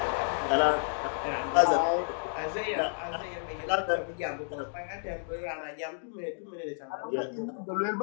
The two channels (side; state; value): right; silent; digital silence